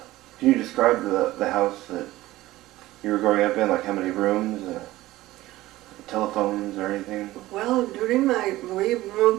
can you describe the house that you were growing up in, like how many rooms, telephones or anything? Well, we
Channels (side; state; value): left; quieter; 17.0 dB